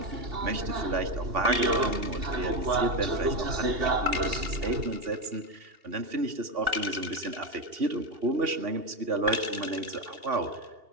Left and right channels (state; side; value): late; left; 2.8 ms